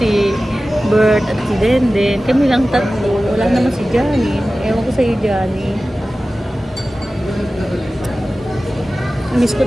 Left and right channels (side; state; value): both; normal; correlation 0.96